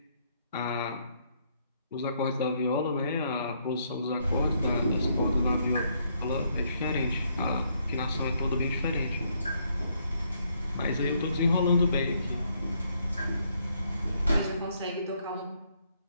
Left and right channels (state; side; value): inverted; both; correlation -0.72